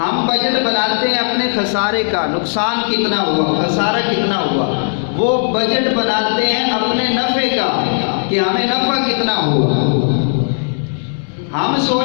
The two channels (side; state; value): right; silent; 68 dB below the other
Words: بجٹ بناتے ہیں اپنے خسارے کا، نقصان کتنا ہوا، خسارہ کتنا ہوا، وہ بجٹ بناتے ہیں اپنے نفع کا کہ ہمیں نفع کتنا ہوا۔ ہم